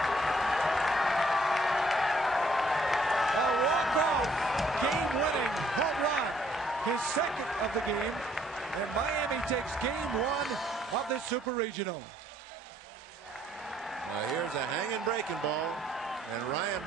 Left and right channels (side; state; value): both; normal; correlation 0.65